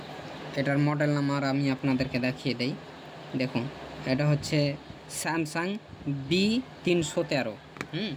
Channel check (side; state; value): both; identical; correlation 1.00